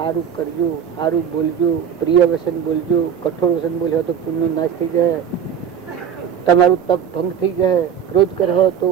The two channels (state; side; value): quieter; left; 8.3 dB